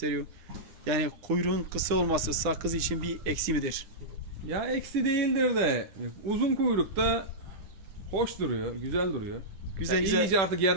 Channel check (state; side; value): late; left; 10 ms